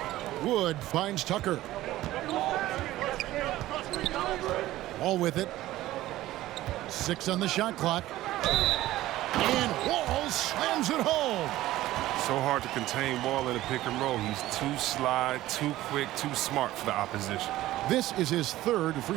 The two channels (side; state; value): left; quieter; 15.7 dB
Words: Wood finds Tucker. Wall with it. 6 on the shot clock. And Wall slams it home. So hard to contain Wall in a pick and roll. He's too sly, too quick, too smart for the opposition. This is his 3rd